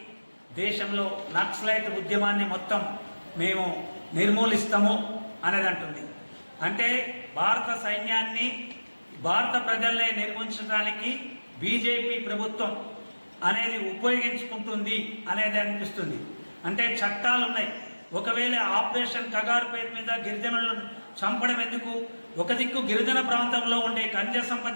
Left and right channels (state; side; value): inverted; both; correlation -1.00